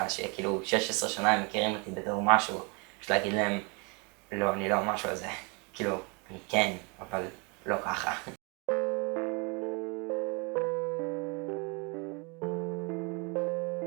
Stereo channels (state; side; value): quieter; left; 31.8 dB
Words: שכאילו 16 שנה הם מכירים אותי בתור משהו, פשוט להגיד להם, לא, אני לא משהו הזה. כאילו, אני כן, אבל לא ככה.